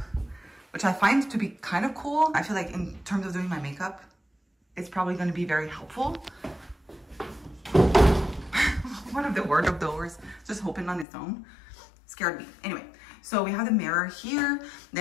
which I find to be kind of cool. I feel like in terms of doing my makeup, it's probably going to be very helpful. One of the wardrobe doors just opened on its own. Scared me. Anyway, so we have the mirror here,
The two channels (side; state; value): right; drops out; at 11.1 s